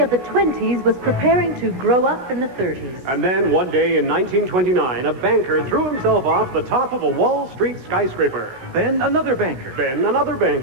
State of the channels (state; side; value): late; left; 16 ms